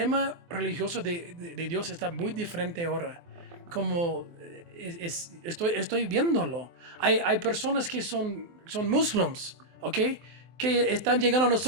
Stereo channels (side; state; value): left; late; 23 ms